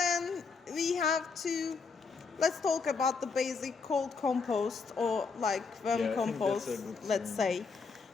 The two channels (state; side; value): quieter; right; 4.9 dB